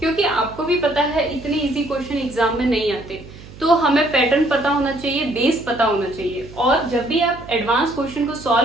आपको भी पता है इतने इजी क्वेश्चन एग्जाम में नहीं आते। तो हमें पैटर्न पता होना चाहिए, बेस पता होना चाहिए। और जब भी आप एडवांस क्वेश्चन को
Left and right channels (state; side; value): noise; right; hum, 18 dB below the sound